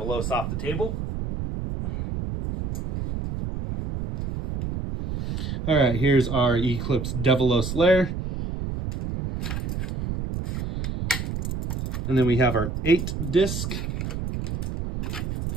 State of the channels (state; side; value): noise; right; rumble, 4 dB below the sound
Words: off the table. All right, here's our Eclipse Devilos Lair. And then we have our 8 disc.